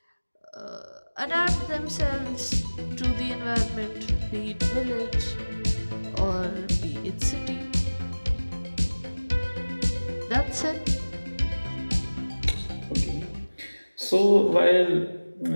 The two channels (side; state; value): both; inverted; correlation -1.00